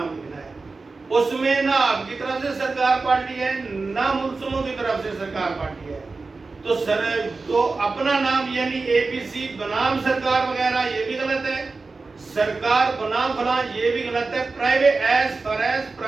لکھنا ہے، اس میں نہ آپ کی طرف سے سرکار پارٹی ہے نہ ملزموں کی طرف سے سرکار پارٹی ہے۔ تو اپنا نام یعنی اے پی سی بنام سرکار وغیرہ یہ بھی غلط ہے، سرکار بنام فلاں یہ بھی غلط ہے۔ Private as far as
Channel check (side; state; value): left; quieter; 3.9 dB